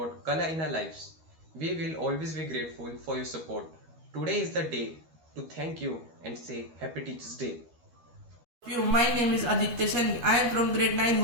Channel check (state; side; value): late; left; 13 ms